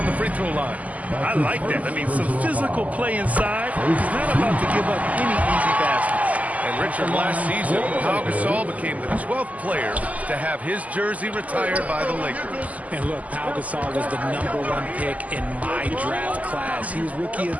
the free throw line. I like that. I mean, some physical play inside. He's not about to give up any easy baskets. And Richard, last season, Pau Gasol became the 12th player to have his jersey retired by the Lakers. And look, Pau Gasol was the #1 pick in my draft class. He was Rookie of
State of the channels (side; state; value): left; late; 0.074 ms